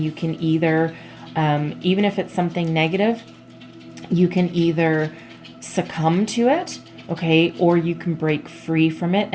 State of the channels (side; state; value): both; identical; correlation 1.00